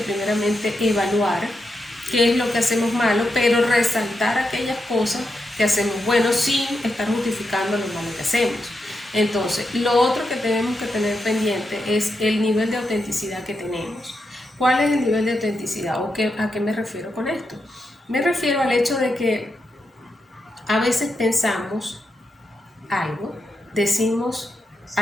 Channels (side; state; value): both; normal; correlation 0.86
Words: evaluar qué es lo que hacemos malo, pero resaltar aquellas cosas que hacemos bueno sin estar justificando lo malo que hacemos. Entonces, lo otro que tenemos que tener pendiente es el nivel de autenticidad que tenemos. ¿Cuál es el nivel de autenticidad? ¿O a qué me refiero con esto? Me refiero al hecho de que a veces pensamos algo, decimos